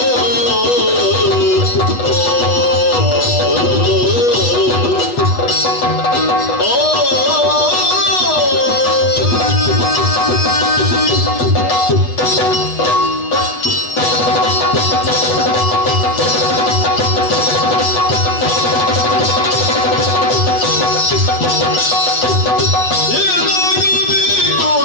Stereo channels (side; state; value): right; late; 8.2 ms